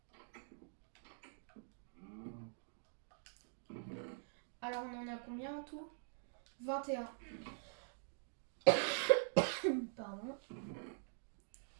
Alors, on en a combien en tout? 21. Pardon.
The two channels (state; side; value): silent; left; digital silence